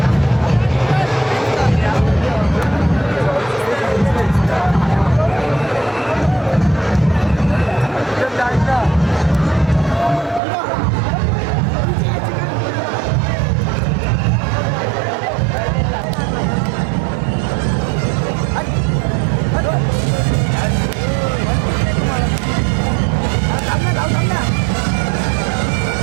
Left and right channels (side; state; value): left; drops out; at 10.4 s